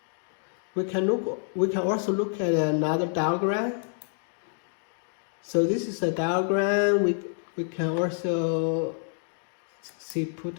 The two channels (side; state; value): right; silent; digital silence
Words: We can also look at another diagram. So this is a diagram we can also see